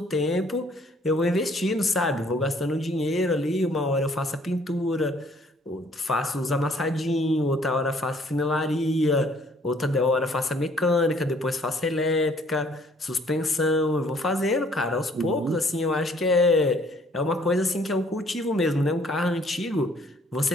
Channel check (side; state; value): both; normal; correlation 0.61